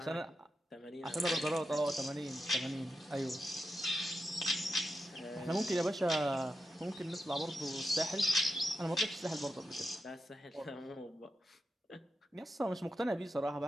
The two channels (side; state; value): both; normal; correlation 0.88